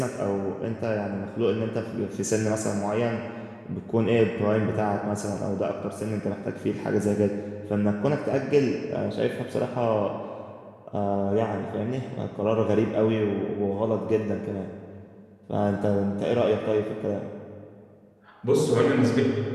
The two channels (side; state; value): both; identical; correlation 1.00